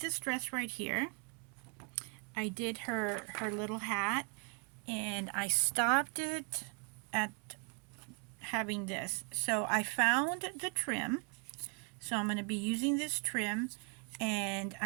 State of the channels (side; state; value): left; quieter; 32.9 dB